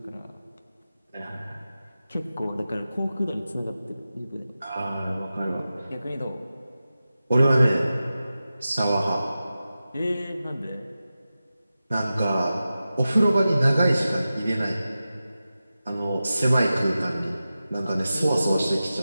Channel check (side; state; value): both; inverted; correlation -0.94